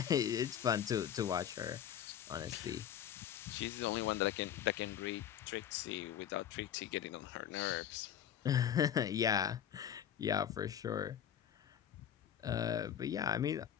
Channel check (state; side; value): quieter; right; 9.9 dB